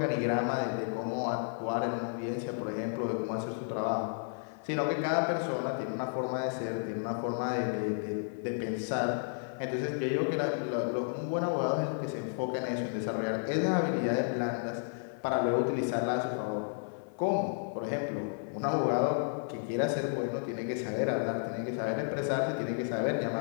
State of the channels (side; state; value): right; silent; 56 dB below the other